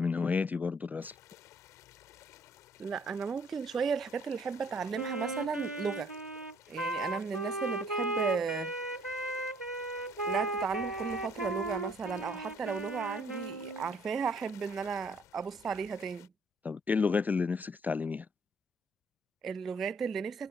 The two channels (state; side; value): normal; both; correlation 0.62